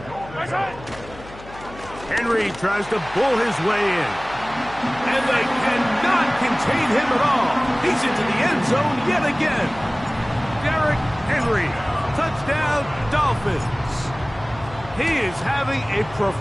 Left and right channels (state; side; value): noise; left; hum, 17 dB below the sound